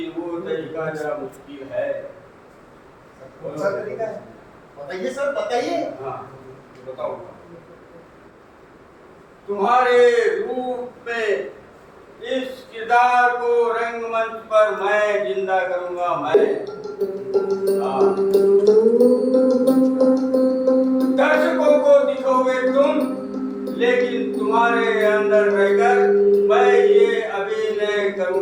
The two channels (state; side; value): identical; both; correlation 1.00